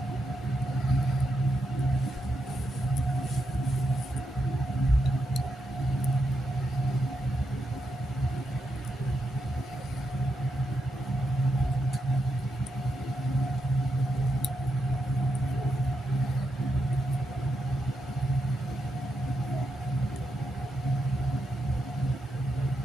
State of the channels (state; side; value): normal; both; correlation 0.84